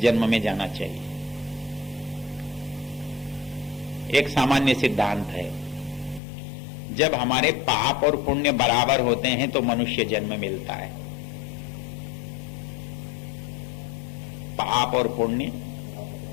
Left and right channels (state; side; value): drops out; right; at 6.2 s